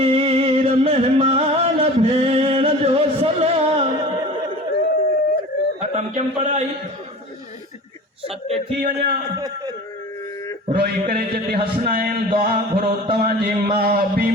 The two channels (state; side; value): normal; both; correlation 0.38